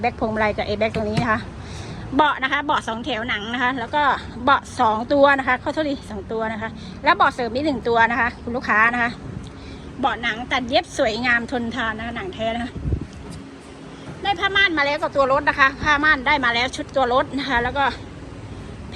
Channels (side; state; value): both; identical; correlation 1.00